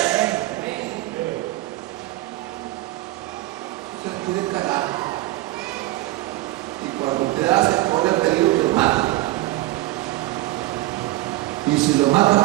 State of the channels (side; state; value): left; quieter; 17.7 dB